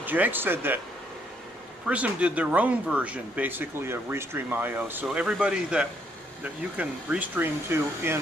Jake said that Prism did their own version, basically, of Restream IO. So everybody that you can restream to in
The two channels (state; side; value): normal; both; correlation 0.71